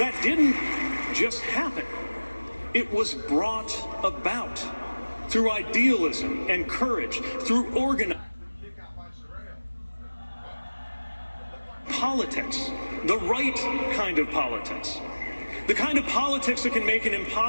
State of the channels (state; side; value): inverted; both; correlation -1.00